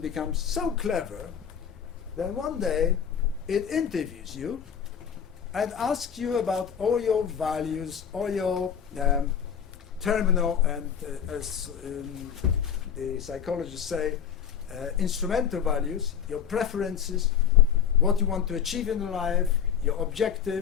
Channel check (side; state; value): right; quieter; 8.2 dB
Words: becomes so clever that one day it interviews you and asks you about all your values, all your terminal and, as the psychologists say, instrumental values, your preferences, what you want to achieve in life, your